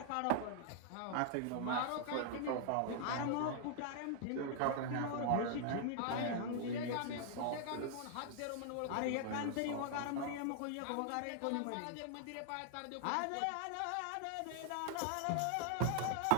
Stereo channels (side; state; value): both; different; correlation 0.00